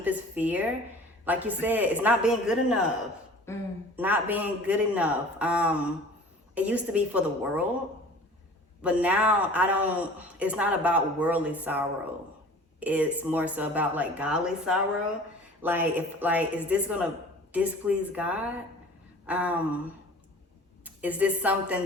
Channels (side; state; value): both; normal; correlation 0.44